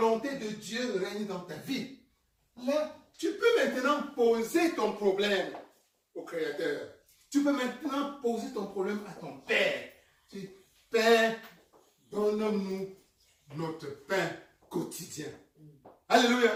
de Dieu règne dans ta vie, là, tu peux maintenant poser ton problème au Créateur. Tu peux maintenant poser ton problème à ton Père. Tu dis, Père, donne-nous notre pain quotidien.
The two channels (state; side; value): identical; both; correlation 1.00